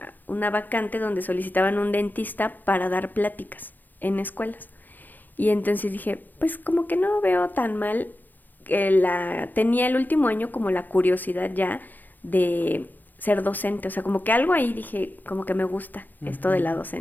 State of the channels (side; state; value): right; late; 0.086 ms